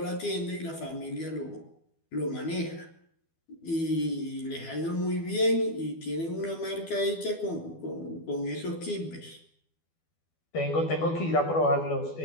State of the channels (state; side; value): late; right; 12 ms